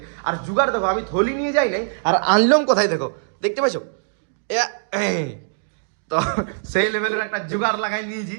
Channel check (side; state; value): left; silent; digital silence